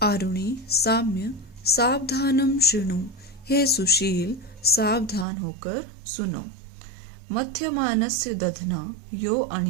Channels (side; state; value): left; drops out; at 5.2 s